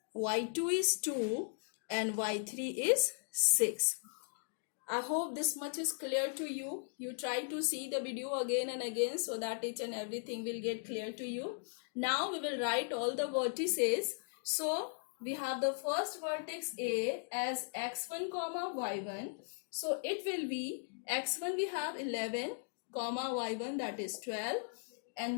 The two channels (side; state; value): right; silent; digital silence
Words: y2 is 2 and y3 is 6. I hope this much is clear to you. You try to see the video again and again so that each and everything will get clear to you. Now we will write all the vertices. So we have the first vertex A as x1 comma y1. So it will be x1 we have 11 comma y1 that is 12.